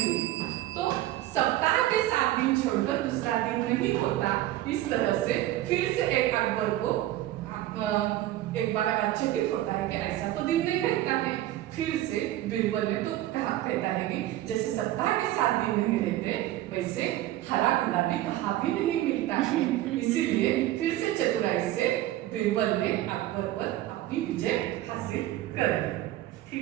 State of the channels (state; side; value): quieter; left; 14.8 dB